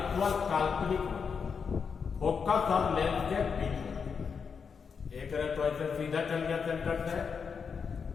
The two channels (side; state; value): right; quieter; 6.0 dB